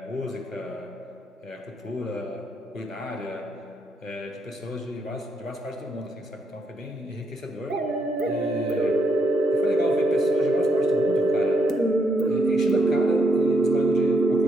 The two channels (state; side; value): normal; both; correlation 0.76